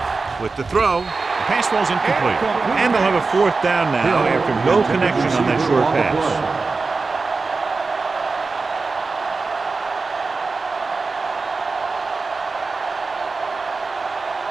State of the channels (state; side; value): quieter; left; 4.1 dB